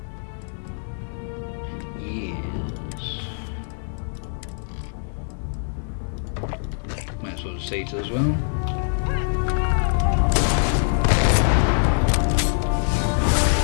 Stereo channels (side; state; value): right; silent; digital silence